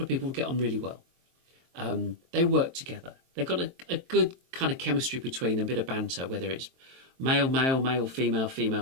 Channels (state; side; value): late; left; 23 ms